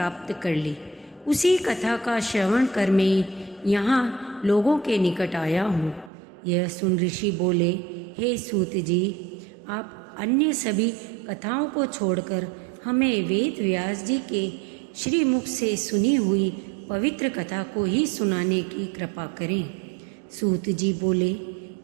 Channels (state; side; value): drops out; left; at 6.1 s